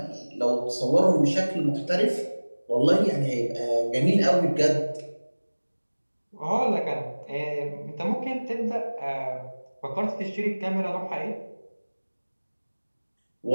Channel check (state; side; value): inverted; both; correlation -1.00